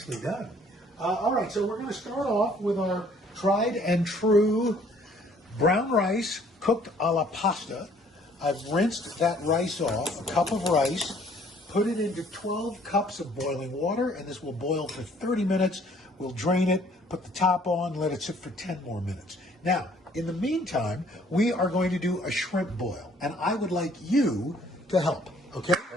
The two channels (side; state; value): both; normal; correlation 0.59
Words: done. All right, so we're going to start off with our tried and true brown rice cooked a la pasta. I've rinsed that rice off, a cup of rice, put it into 12 cups of boiling water, and this will boil for 30 minutes. We'll drain it, put the top on, let it sit for 10 more minutes. Now, in the meantime, we are going to do a shrimp boil, and I would like you to help, okay?